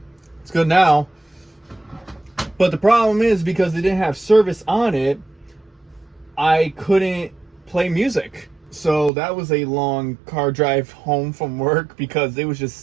it's good now. But the problem is, because they didn't have service on it, I couldn't play music. So that was a long car drive home from work, because it was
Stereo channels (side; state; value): left; drops out; at 9.1 s